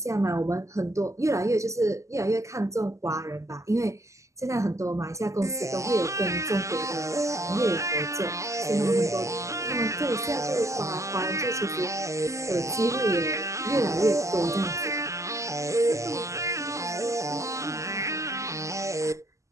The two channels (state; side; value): late; left; 0.15 ms